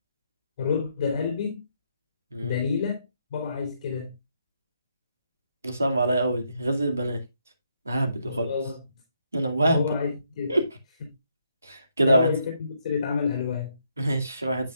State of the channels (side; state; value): both; inverted; correlation -0.76